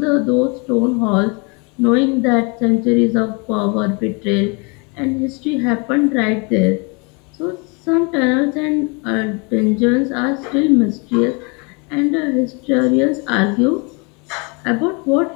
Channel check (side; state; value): right; quieter; 31.7 dB